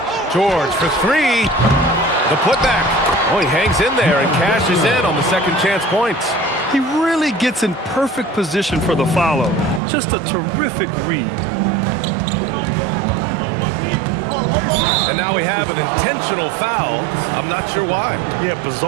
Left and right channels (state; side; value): drops out; left; at 9.8 s